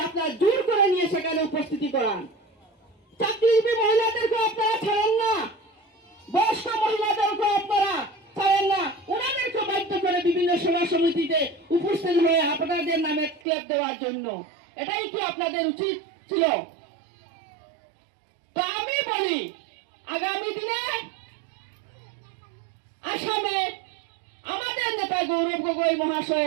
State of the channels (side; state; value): left; drops out; at 13.4 s